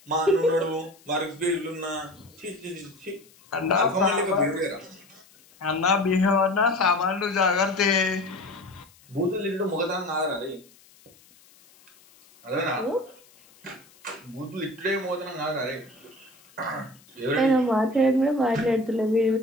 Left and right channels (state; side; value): noise; left; hiss, 28 dB below the sound